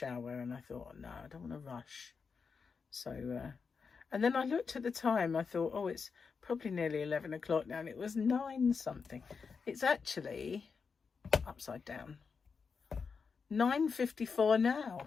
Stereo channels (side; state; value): right; quieter; 5.4 dB